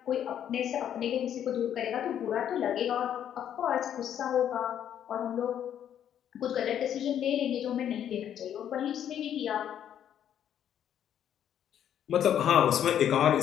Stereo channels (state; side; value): quieter; right; 9.9 dB